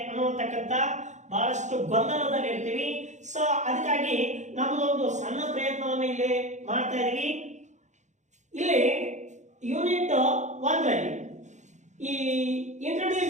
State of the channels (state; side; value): late; left; 0.34 ms